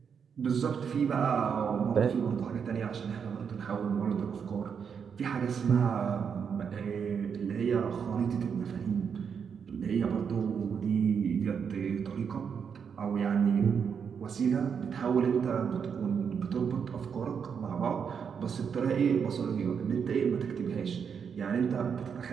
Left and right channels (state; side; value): quieter; left; 6.8 dB